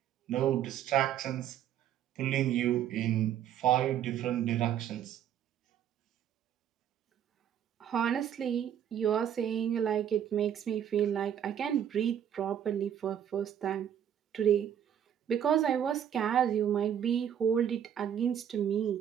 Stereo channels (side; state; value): left; quieter; 9.6 dB